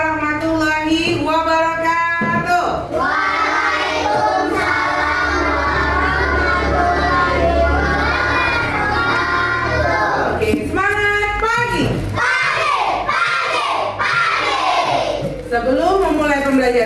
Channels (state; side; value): identical; both; correlation 1.00